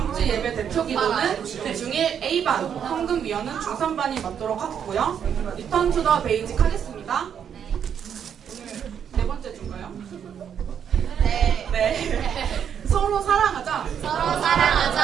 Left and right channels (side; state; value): left; quieter; 8.3 dB